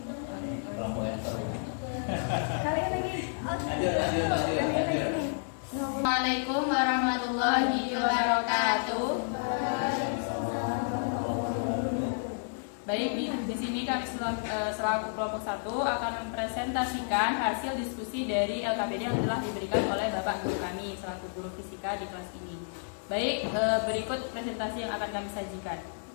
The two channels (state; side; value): silent; right; digital silence